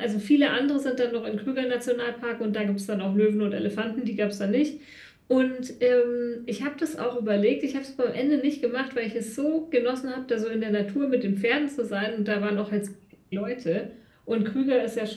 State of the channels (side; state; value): both; identical; correlation 1.00